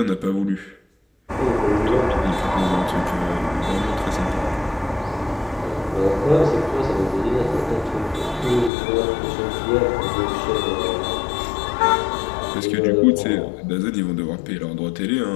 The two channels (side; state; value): right; drops out; at 8.7 s